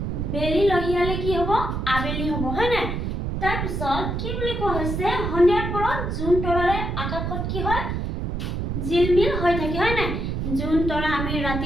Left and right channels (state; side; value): noise; right; rumble, 2 dB below the sound